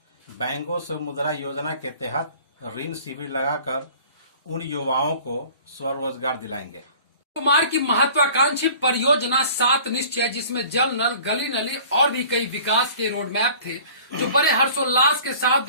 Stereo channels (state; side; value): inverted; both; correlation -0.47